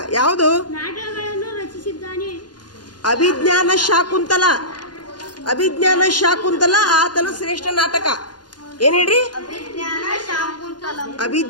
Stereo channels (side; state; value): right; late; 0.70 ms